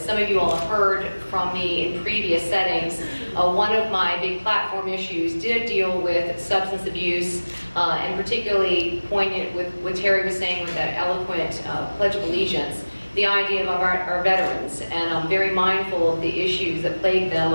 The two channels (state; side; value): inverted; both; correlation -1.00